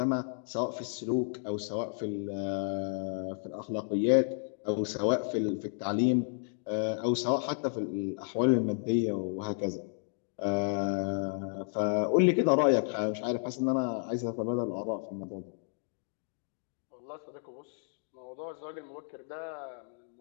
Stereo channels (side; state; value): right; silent; 56 dB below the other